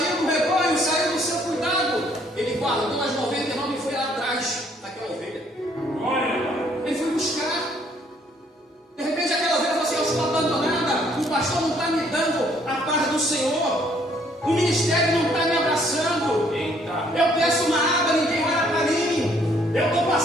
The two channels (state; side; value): normal; both; correlation 0.64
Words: do rebanho, saiu do seu cuidado. Ele guardou as 99 e foi lá atrás daquela ovelha. Ele foi buscar. De repente aquela ovelha falou assim: eu estou abandonada, o pastor não está me dando a paz do Senhor, o ministério não está me abraçando. Eu peço uma água, ninguém olha para mim, eu estou